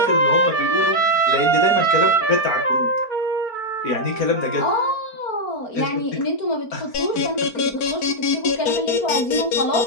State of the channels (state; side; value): late; right; 4.4 ms